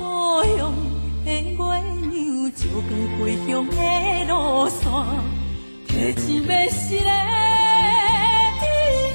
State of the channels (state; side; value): inverted; both; correlation -1.00